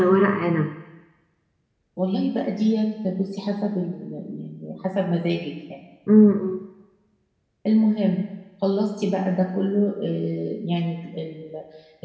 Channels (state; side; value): identical; both; correlation 1.00